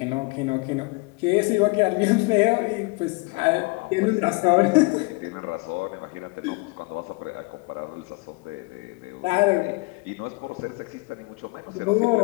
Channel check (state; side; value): quieter; right; 26.9 dB